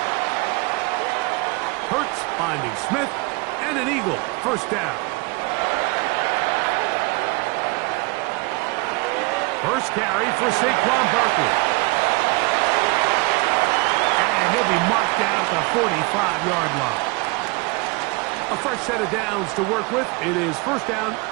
Hurts finding Smith and an Eagle first down. First carry for Saquon Barkley. And he'll be marked down at the 45-yard line. A fresh set of downs to work with. It is first down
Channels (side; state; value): left; quieter; 26.6 dB